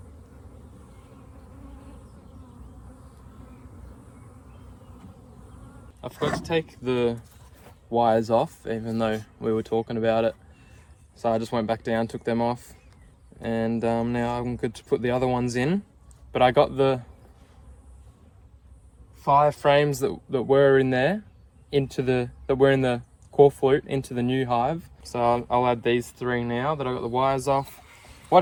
I forgot to take the wires off, even though we were talking about it. So I just went back down, took them off, and now I'm good to put the other ones in. But I got the 5 frames that were in there that were in the core flute into the new hive. So I'll add these 3 now that I got the wires off.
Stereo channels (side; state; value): both; identical; correlation 1.00